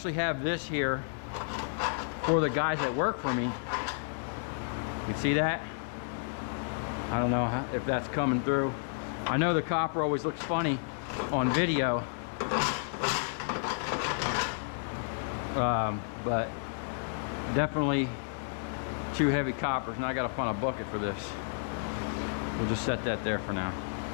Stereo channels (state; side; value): silent; right; digital silence